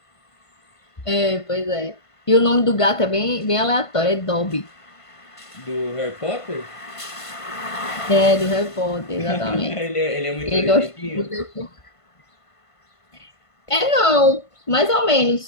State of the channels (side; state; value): right; late; 1.5 ms